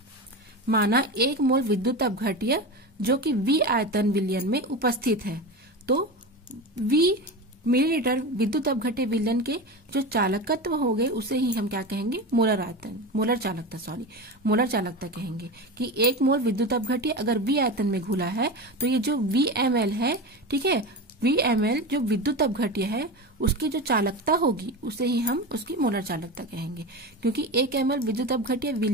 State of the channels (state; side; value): normal; both; correlation 0.24